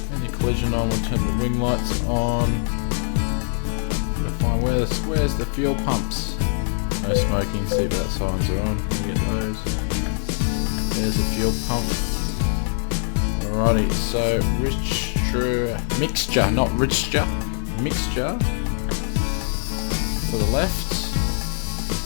any collision on, we'll turn the wing lights on. Gotta find where's the fuel pumps. No smoking, seatbelt signs are on. We get those. There's a fuel pump. Alrighty, so mixture, not richture, mixture to the left.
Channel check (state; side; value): silent; right; digital silence